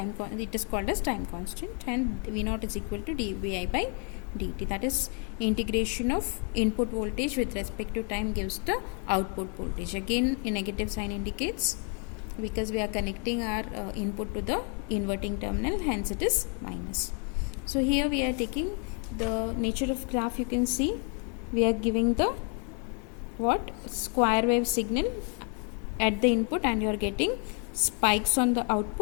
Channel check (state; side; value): quieter; right; 37.7 dB